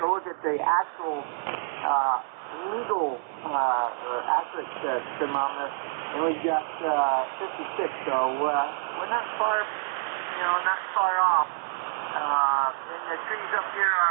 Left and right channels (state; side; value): silent; left; digital silence